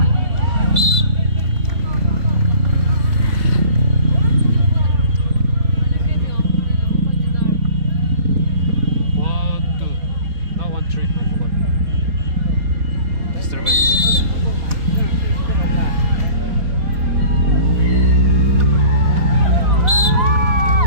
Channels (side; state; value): left; late; 4.0 ms